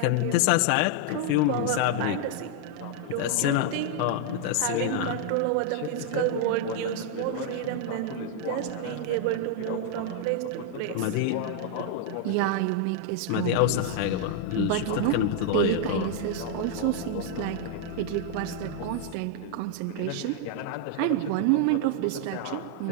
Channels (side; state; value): both; different; correlation 0.00